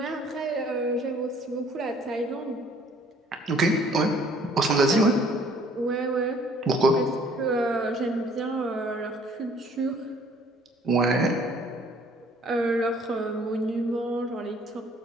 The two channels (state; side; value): normal; both; correlation 0.57